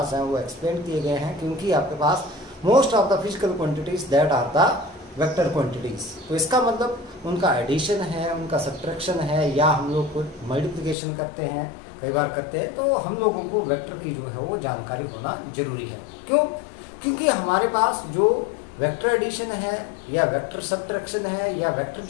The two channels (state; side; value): drops out; right; at 11.0 s